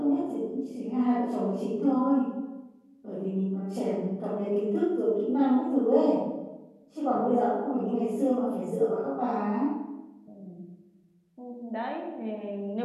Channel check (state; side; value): identical; both; correlation 1.00